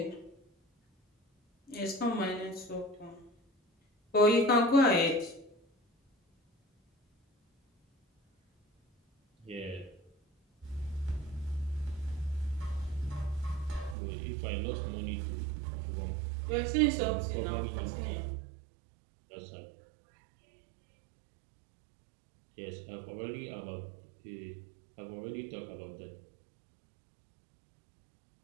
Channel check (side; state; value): left; drops out; at 14.0 s